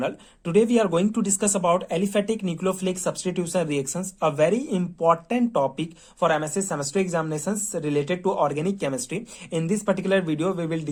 Today we are going to discuss about aliphatic nucleophilic substitution reactions, a very important topic for MSc semester examinations related to organic chemistry. In this particular video, we will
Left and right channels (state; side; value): identical; both; correlation 1.00